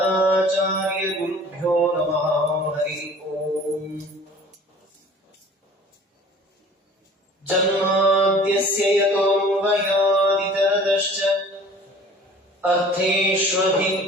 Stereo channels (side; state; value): both; normal; correlation 0.47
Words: ಗುರುಭ್ಯೋ ನಮಃ. ಹರಿ ಓಂ. ಜನ್ಮಾದ್ಯಸ್ಯ ಯತೋನ್ವಯಾದಿತರತಶ್ಚ